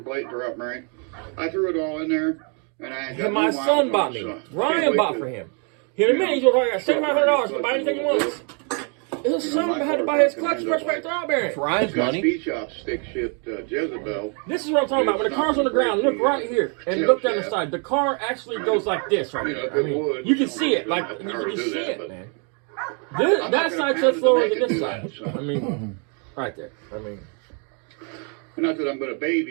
plate, drop bearing. I threw it all in there, and I got And my new son miles bought on it, me. so can't Ryan wait bought to- for him. In a minute, he's going to got $7,500 to buy anything he wants. His son had to buy his clutch, pressure plate, throw bearing. Ryan's It's got money. speed shop stick shift Jezebel. This is what I'm talking about. When the car's on the ground, look right here and look down the side. The car actually goes like this right here. I mean, you can see it. Like, you can just see it, man. That side's so slower than this side. I mean, right there. I mean, Not that I'm going to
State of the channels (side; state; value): left; quieter; 38.3 dB